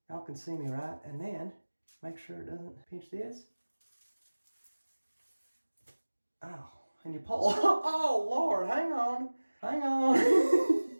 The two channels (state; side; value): inverted; both; correlation -1.00